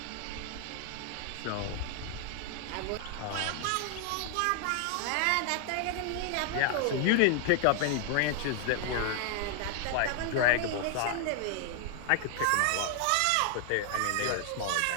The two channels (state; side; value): different; both; correlation 0.00